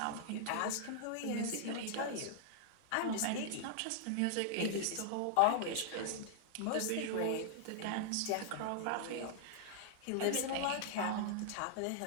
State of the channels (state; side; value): different; both; correlation -0.01